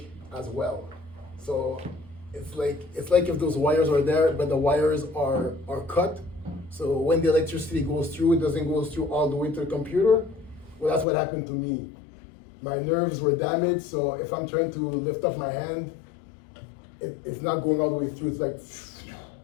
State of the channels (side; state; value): right; drops out; at 11.1 s